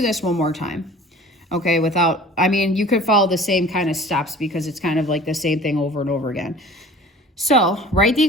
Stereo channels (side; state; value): both; normal; correlation 0.45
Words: this one more time, okay? Without, I mean, you could follow the same kind of steps because it's kind of like the same thing over and over again. So write the